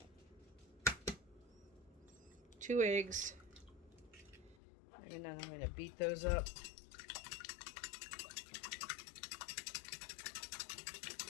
2 eggs. And then I'm going to beat those up.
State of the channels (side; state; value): right; drops out; at 4.5 s